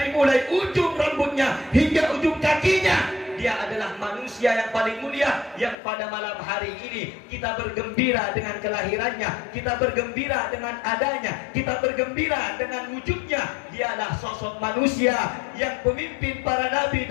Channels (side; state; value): right; drops out; at 5.8 s